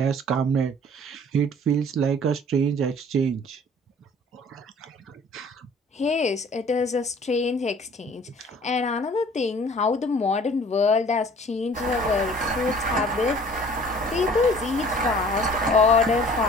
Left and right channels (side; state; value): both; normal; correlation 0.51